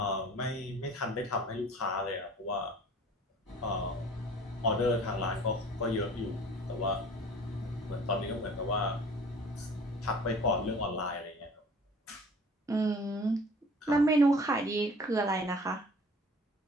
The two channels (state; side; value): normal; both; correlation 0.46